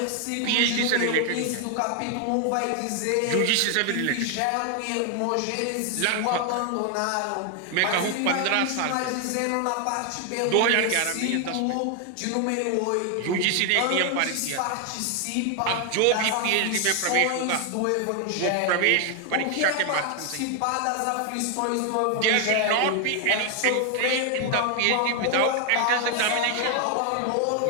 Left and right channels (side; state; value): both; different; correlation 0.00